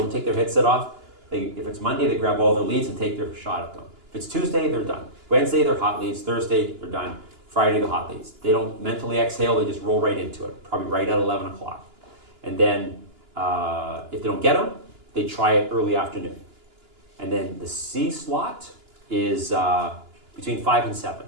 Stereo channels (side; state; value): left; late; 2.9 ms